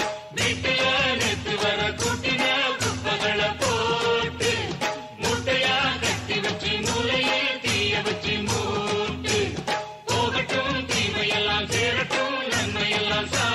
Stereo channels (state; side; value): identical; both; correlation 1.00